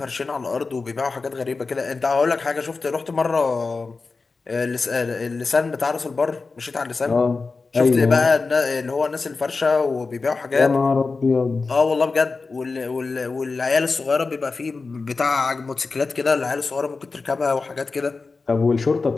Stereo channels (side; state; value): right; quieter; 4.1 dB